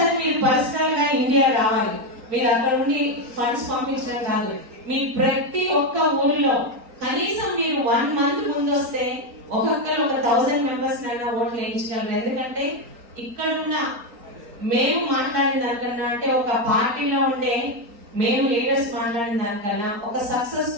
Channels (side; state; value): left; late; 4.3 ms